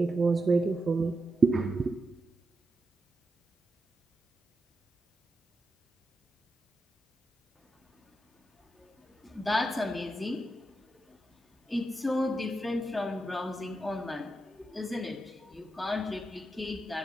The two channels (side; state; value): both; normal; correlation 0.87